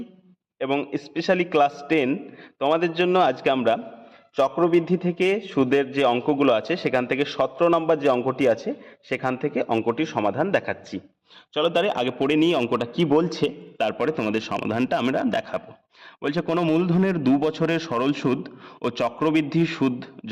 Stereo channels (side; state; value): both; identical; correlation 1.00